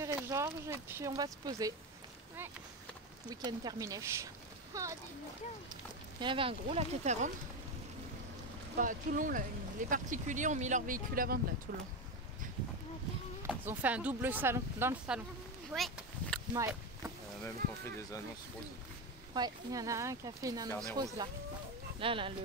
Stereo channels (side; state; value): both; normal; correlation 0.15